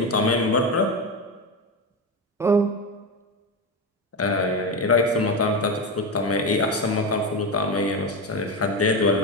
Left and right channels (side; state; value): both; normal; correlation 0.16